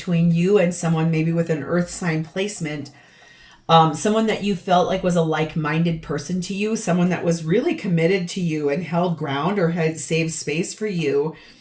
you and someone, maybe with an earth sign placement, someone that you felt like was a like-minded person to you, someone that was really committed to you and held ground or had saved space for you.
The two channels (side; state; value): both; identical; correlation 1.00